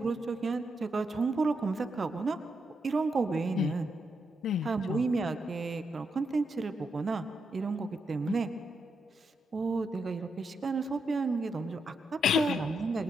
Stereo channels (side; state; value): both; normal; correlation 0.82